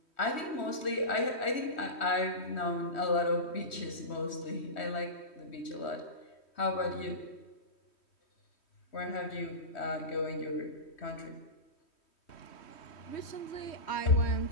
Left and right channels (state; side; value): late; right; 3.1 ms